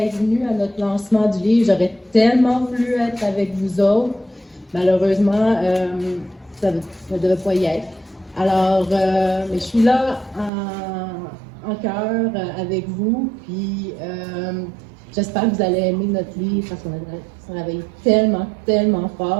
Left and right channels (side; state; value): left; drops out; at 10.5 s